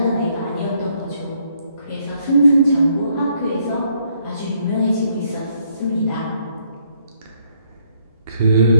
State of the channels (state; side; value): inverted; both; correlation -0.70